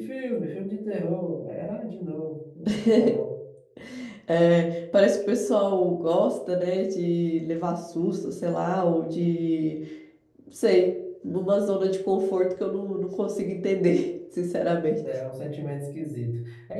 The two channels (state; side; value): identical; both; correlation 1.00